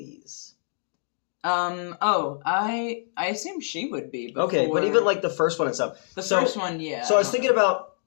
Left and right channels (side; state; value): right; silent; digital silence